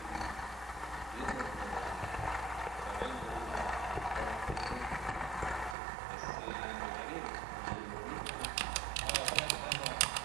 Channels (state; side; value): drops out; left; at 5.8 s